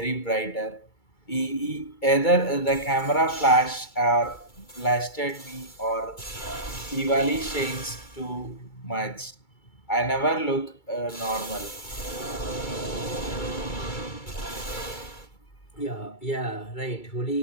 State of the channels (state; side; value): late; right; 2.3 ms